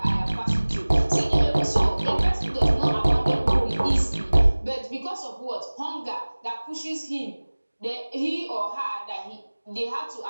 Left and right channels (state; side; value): inverted; both; correlation -1.00